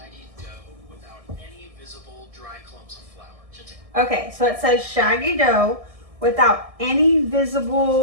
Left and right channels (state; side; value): late; left; 1.6 ms